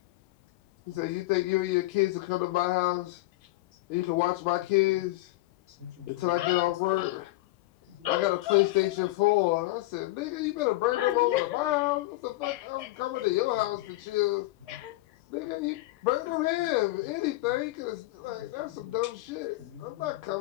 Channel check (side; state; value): right; quieter; 19.0 dB